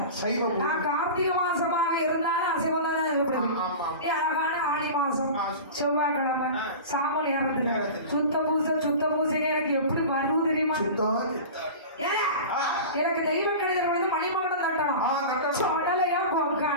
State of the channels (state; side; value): inverted; both; correlation -0.32